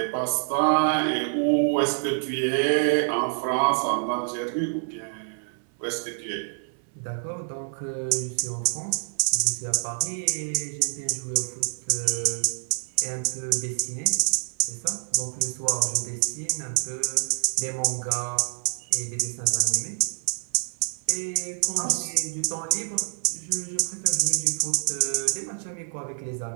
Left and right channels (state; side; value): silent; left; 60 dB below the other